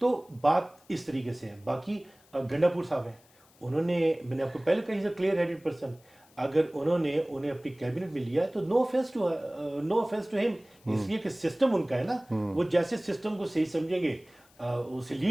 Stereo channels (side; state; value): left; noise; hiss, 30 dB below the sound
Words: تو بات اس طریقے سے ہے. باقی گنڈا پور صاحب ہیں, انہوں نے, میں نے آپ کو پہلے کہا, کلیئر ہیڈڈ پرسن. اگر انہیں اپنی کیبنٹ میں لیا ہے تو نو افینس ٹو ہم, اس لیے کہ سسٹم ان کا ہے نا, وہ جیسے سسٹم کو صحیح سمجھیں گے اسے